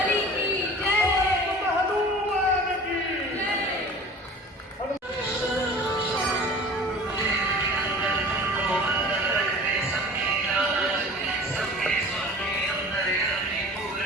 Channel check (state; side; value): normal; both; correlation 0.41